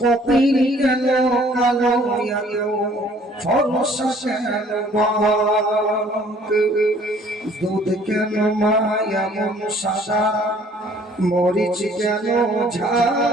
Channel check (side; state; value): both; normal; correlation 0.57